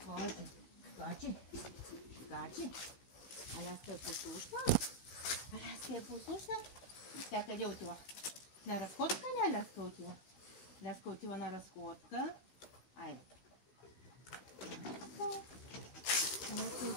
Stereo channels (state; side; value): late; right; 16 ms